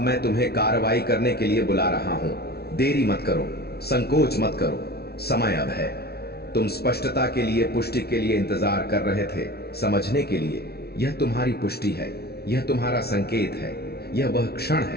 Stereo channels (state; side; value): late; right; 0.46 ms